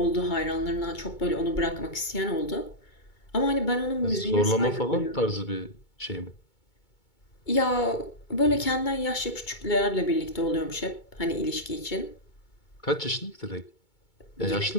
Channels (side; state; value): right; late; 2.2 ms